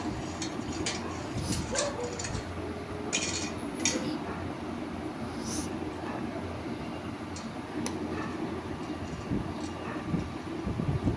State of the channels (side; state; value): both; identical; correlation 1.00